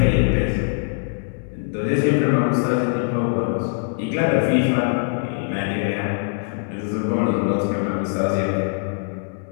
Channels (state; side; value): silent; right; 64 dB below the other